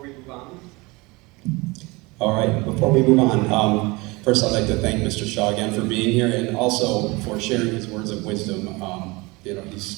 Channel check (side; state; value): left; quieter; 24.4 dB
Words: we move on? All right, before we move on, first I'd like to thank Mr. Shaw again for being here and also for sharing his words of wisdom.